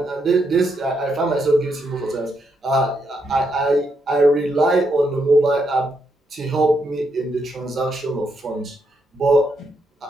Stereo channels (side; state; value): both; normal; correlation 0.79